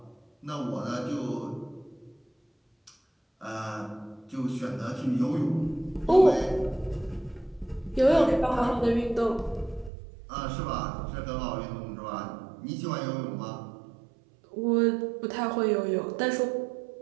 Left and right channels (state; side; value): drops out; left; at 9.9 s